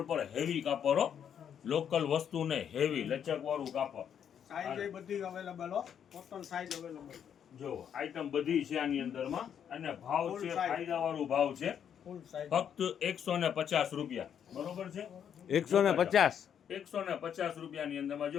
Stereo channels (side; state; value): right; quieter; 8.6 dB